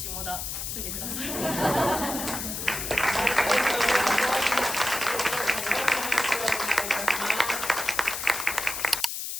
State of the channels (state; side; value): noise; left; hiss, 5 dB below the sound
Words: 田住んでください。